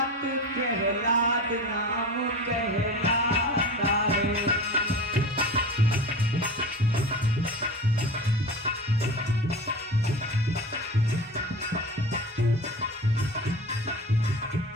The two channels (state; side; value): normal; both; correlation 0.31